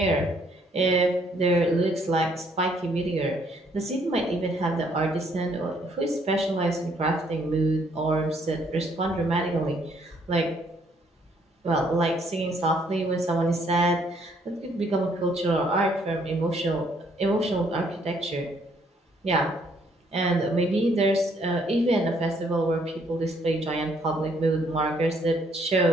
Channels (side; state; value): both; normal; correlation 0.67